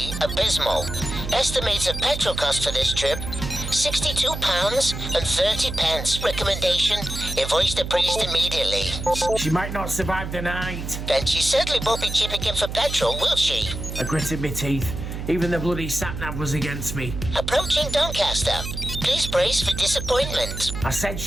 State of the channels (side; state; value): right; noise; hum, 6 dB below the sound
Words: abysmal. Estimated petrol cost for this trip, £62.30. Recommendation, invoice the priest immediately. She might not survive the night. Then she certainly won't be chipping in for petrol, will she? I gritted my teeth. Even the bloody sat-nav was against me. Approaching Doncaster. Please brace for disappointment. I said